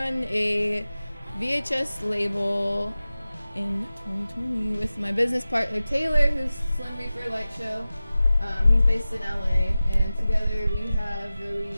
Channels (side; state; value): both; inverted; correlation -0.96